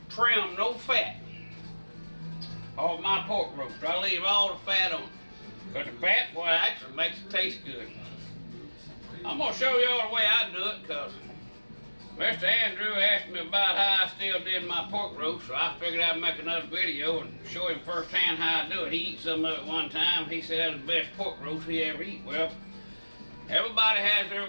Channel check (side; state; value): both; inverted; correlation -1.00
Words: trim no fat off my pork roast. I leave all the fat on. Because the fat, boy, actually makes it taste good. I'm going to show y'all the way I do it, because Mr. Andrew asked me about how I still did my pork roast, so I figured I'd make another video and show him firsthand how I do it. He eat some of it one time. He said that was the best pork roast he ever eat. Well, everybody has